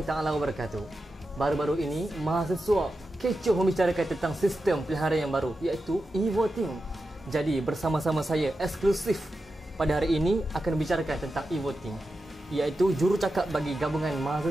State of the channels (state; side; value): normal; both; correlation 0.90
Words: taala wabarakatuh. Baru-baru ini mahasiswa kecoh membicarakan tentang sistem pilihan yang baru, iaitu e-voting. Jadi bersama-sama saya eksklusif pada hari ini akan membicarakan tentang e-voting, iaitu jurucakap bagi gabungan